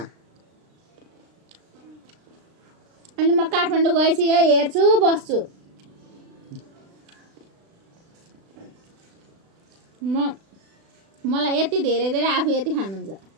अनि म काठमाडौँ गएपछि हेर्छु बस्छु मलाई यति धेरै धेरै आफू यति खानुहुन्छ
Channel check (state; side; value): late; left; 36 ms